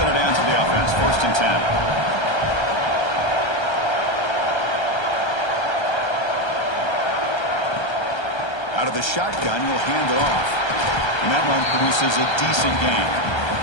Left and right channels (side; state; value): right; late; 1.3 ms